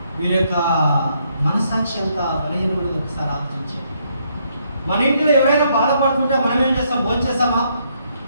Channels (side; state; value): both; inverted; correlation -0.73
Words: వీరి యొక్క మనసాక్షి ఎంత బలహీనమైనది ఒకసారి ఆలోచించారు. మన ఇంట్లో ఎవరైనా బాధపడుతుంటే మనం ఏం చేస్తాం? భోజనం చేస్తామా?